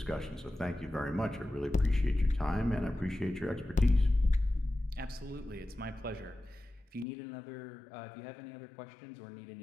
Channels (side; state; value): right; drops out; at 7.1 s